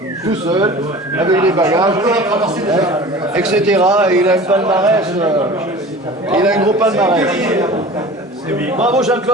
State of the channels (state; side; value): normal; both; correlation 0.40